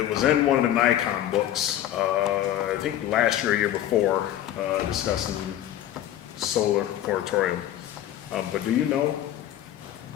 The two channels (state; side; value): quieter; right; 12.1 dB